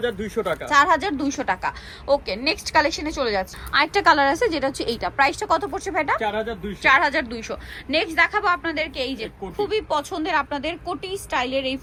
টাকা। 4200 টাকা। ওকে, নেক্সট কালেকশনে চলে যাচ্ছে। আরেকটা কালার আছে যেটা হচ্ছে এইটা। প্রাইসটা কত পড়ছে ভাইটা? 4200। নেক্সট দেখাবো আপনাদেরকে এই যে খুবই পছন্দের আপনাদের কোটি স্টাইলের এই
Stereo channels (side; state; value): both; identical; correlation 1.00